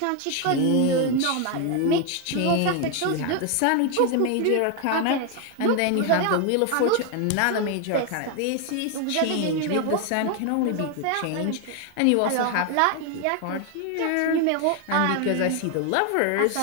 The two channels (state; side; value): different; both; correlation 0.01